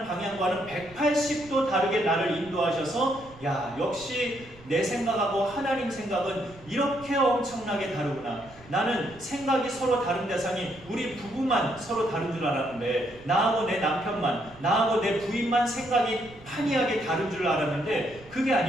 방향과는 180도 다르게 나를 인도하셔서 야, 역시 내 생각하고 하나님 생각은 이렇게 엄청나게 다르구나. 나는 생각이 서로 다른 대상이 우리 부부만 서로 다른 줄 알았는데, 나하고 내 남편만, 나하고 내 부인만 생각이 판이하게 다른 줄 알았는데 그게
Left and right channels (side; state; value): right; noise; rumble, 22 dB below the sound